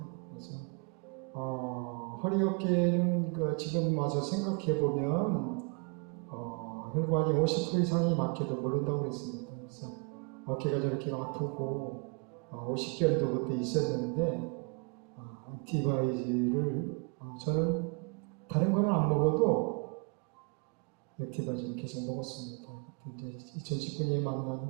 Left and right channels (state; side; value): quieter; left; 34.6 dB